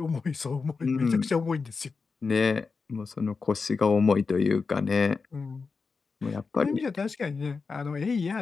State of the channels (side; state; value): right; quieter; 4.7 dB